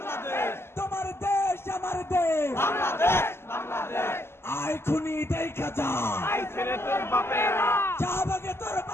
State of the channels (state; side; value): late; right; 0.12 ms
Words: তোমার দেশ আমার দেশ আই খুনি দেখা যা শাহবাগে তোর